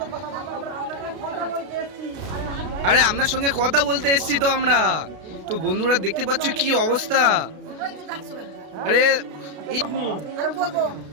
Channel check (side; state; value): left; late; 32 ms